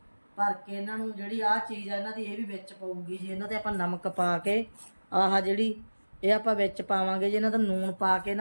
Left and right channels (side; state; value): both; inverted; correlation -1.00